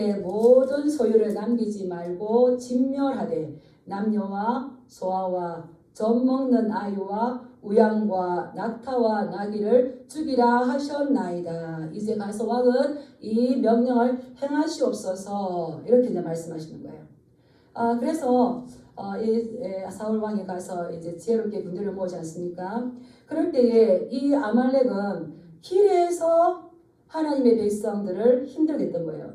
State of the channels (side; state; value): both; identical; correlation 1.00